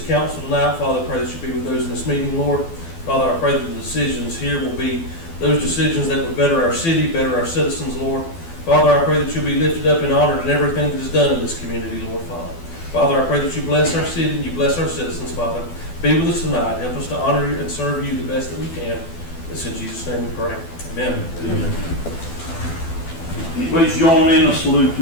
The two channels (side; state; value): right; late; 12 ms